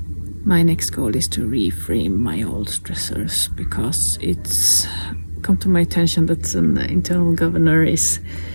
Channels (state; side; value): inverted; both; correlation -1.00